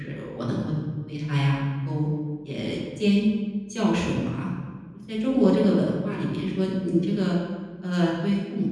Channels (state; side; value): identical; both; correlation 1.00